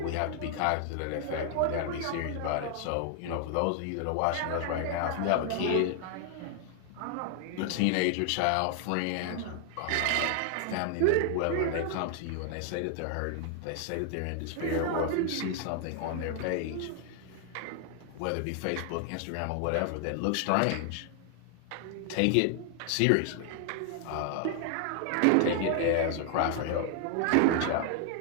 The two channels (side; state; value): both; different; correlation 0.00